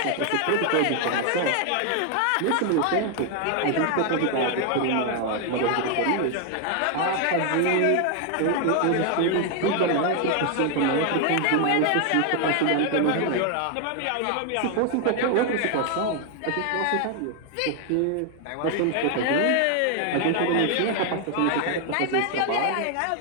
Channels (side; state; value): both; different; correlation 0.00